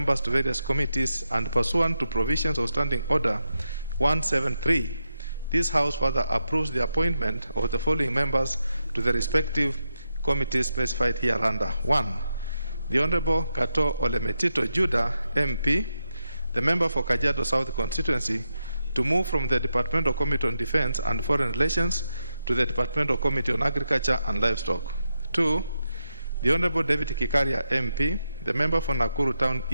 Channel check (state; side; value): inverted; both; correlation -0.86